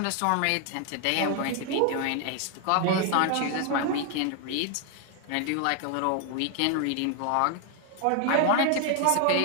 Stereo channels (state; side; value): different; both; correlation 0.00